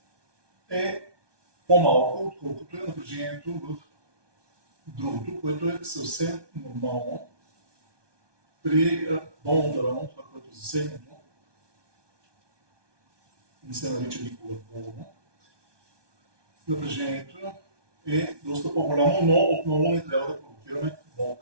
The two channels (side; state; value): left; late; 1.2 ms